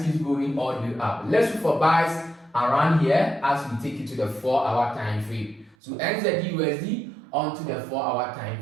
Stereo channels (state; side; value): drops out; left; at 5.8 s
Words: keeps going all the way up. Let's look for buys around here as we take it to the 4-hour time frame. So NZD USD onto the 4-hour